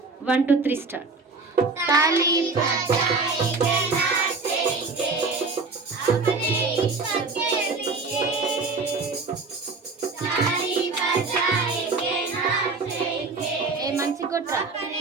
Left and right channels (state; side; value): quieter; left; 4.0 dB